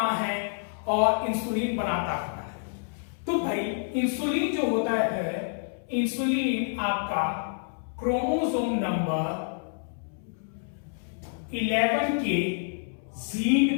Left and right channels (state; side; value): silent; right; 59 dB below the other